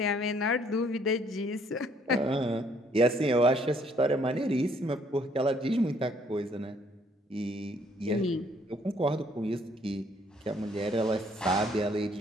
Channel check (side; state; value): both; normal; correlation 0.64